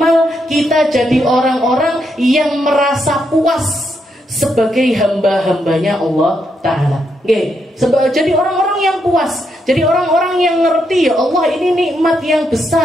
kita jadi orang-orang yang merasa puas sebagai hamba-hambanya Allah Ta'ala. Jadi orang-orang yang puas, jadi orang-orang yang ngerti, ya Allah, ini nikmat yang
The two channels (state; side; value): normal; both; correlation 0.80